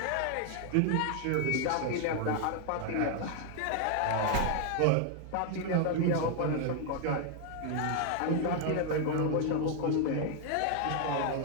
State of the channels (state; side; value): different; both; correlation 0.00